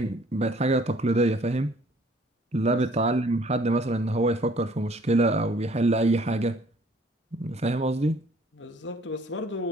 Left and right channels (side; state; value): both; normal; correlation 0.58